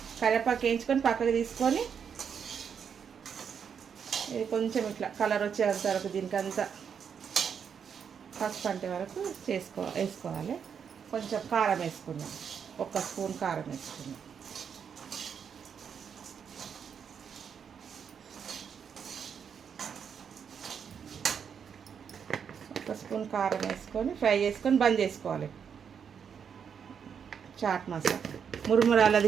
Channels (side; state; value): left; quieter; 7.2 dB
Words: కరివేపాకు వేయించుకొని పక్కకు తీసుకొని ఇది కొంచెం ఇట్లా కలర్ వచ్చేంత వరకు దీనికంతా పసుపు అంటే వరకు వేసుకోవాలి. కొంచెం కారం వేసుకున్నాం, 1 స్పూన్ కారం వేసుకున్నాం. ఒక స్పూన్ కారం వేసుకొని ఫ్రై చేసుకొని బంద్ చేసుకోవాలి. చాట్ మసాలా,